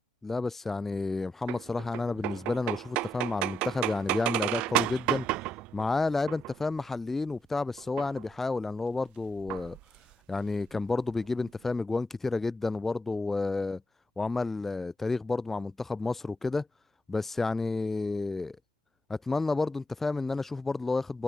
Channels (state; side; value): normal; both; correlation 0.82